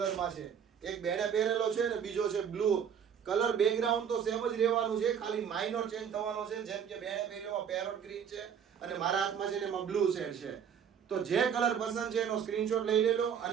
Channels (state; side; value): quieter; left; 7.9 dB